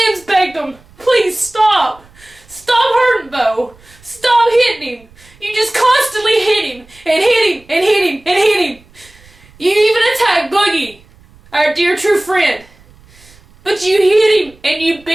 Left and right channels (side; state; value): right; noise; rumble, 27 dB below the sound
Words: begged him, please stop. Stop hurting Beau. Stop hitting him. You just constantly hit him and hit him and hit him and hit him. You even attacked Boogie, our dear true friend. But you hit him and you